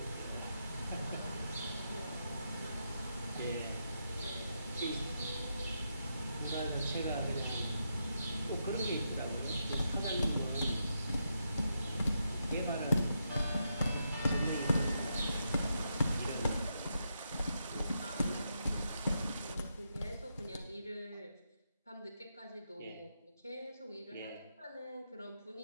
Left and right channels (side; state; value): both; inverted; correlation -0.83